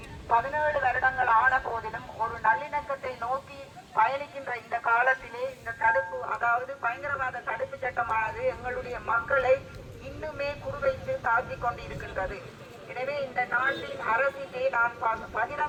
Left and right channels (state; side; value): identical; both; correlation 1.00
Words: 17 வருடங்கள் ஆன போதிலும் ஒரு நல்லிணக்கத்தை நோக்கி பயணிக்கின்ற இந்த காலத்திலே இந்த தடுப்பு, அதாவது பயங்கரவாத தடுப்பு சட்டமானது எங்களுடைய மக்களை இன்னுமே குறிவைத்து தாக்கிக் கொண்டிருக்கின்றது. எனவே இந்த நாட்டின் அரசிலே நான்